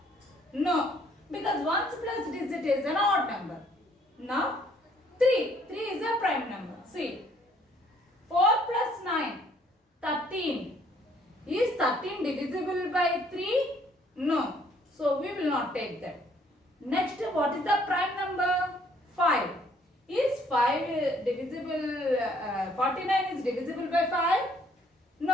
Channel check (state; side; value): normal; both; correlation 0.63